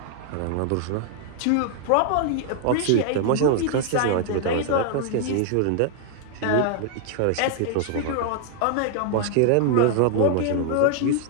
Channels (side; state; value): both; different; correlation 0.00